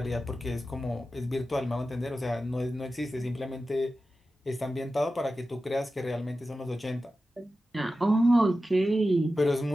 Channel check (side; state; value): both; normal; correlation 0.93